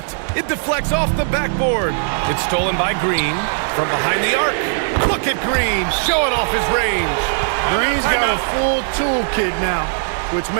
It deflects off the backboard. It's stolen by Green from behind the arc. Look at Green showing off his range. Green's got a full toolkit now, which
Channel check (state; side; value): silent; left; 67 dB below the other